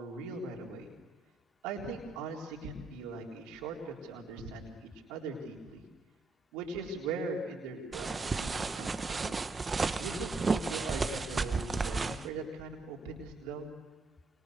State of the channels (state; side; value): quieter; left; 3.5 dB